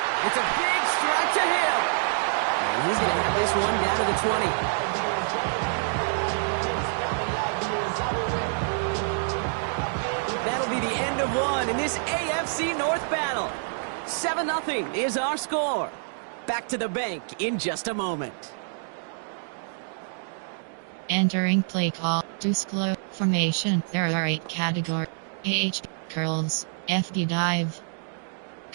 It's a big strike to him. And he's going to have this one down to the 20. That'll be the end of one in this AFC North battle. 7-0 is our score. Back to the bank in just a moment. Entering play call. Disclose formation. There are 8 categories. H. Curls. FD dive.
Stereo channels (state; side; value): silent; left; digital silence